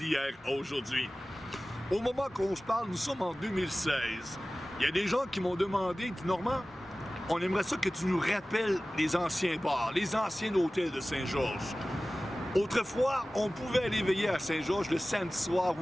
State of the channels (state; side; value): normal; both; correlation 0.97